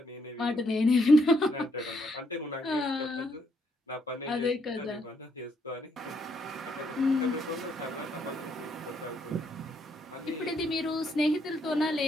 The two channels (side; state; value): both; normal; correlation 0.73